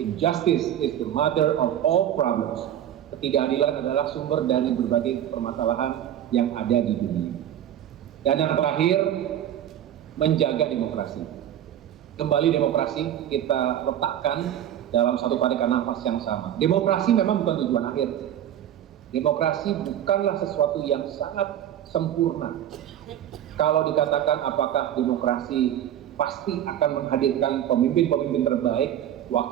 is the mother of all problems. Ketidakadilan adalah sumber dari berbagai permasalahan yang ada di dunia. Dan yang terakhir, menjaga demokrasi. Kembali demokrasi kita letakkan dalam satu tarikan nafas yang sama. Demokrasi memang bukan tujuan akhir. Demokrasi bukanlah sesuatu yang sangat sempurna. Kalau dikatakan apakah demokrasi pasti akan menghadirkan pemimpin-pemimpin terbaik,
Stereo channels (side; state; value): left; quieter; 10.9 dB